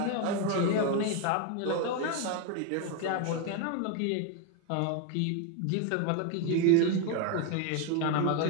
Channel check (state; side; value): different; both; correlation 0.01